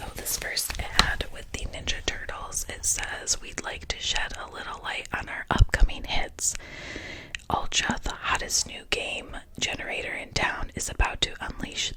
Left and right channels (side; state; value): both; identical; correlation 1.00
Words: this first ad with the Ninja Turtles, it says, "We'd like to shed a little light on our upcoming hits. Ultra, the hottest new game generator in town, is about to unleash